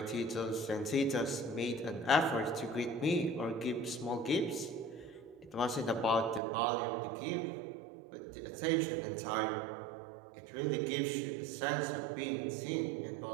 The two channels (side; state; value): left; drops out; at 6.4 s